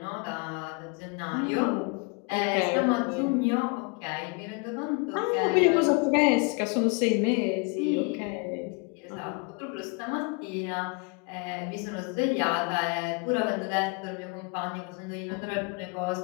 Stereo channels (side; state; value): right; quieter; 32.3 dB